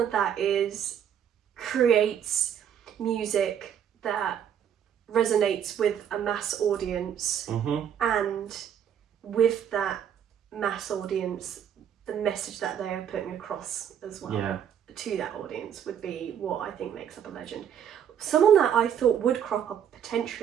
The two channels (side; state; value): left; quieter; 9.0 dB